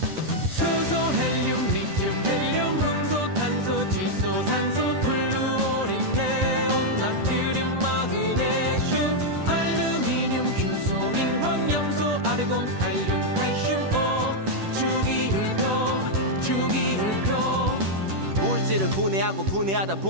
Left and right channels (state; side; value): late; left; 10 ms